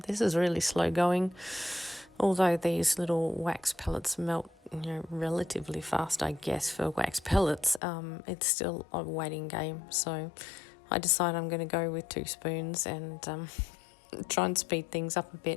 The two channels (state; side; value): drops out; right; at 7.8 s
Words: This is really slow going, although these little wax pellets melt relatively fast, I guess, for wax pellets. It's still a waiting game, so I decide I'm going to go with 2 spoons and try and speed things up a